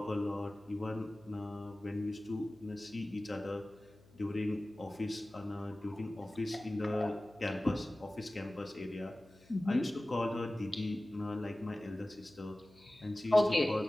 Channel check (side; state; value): left; noise; hum, 26 dB below the sound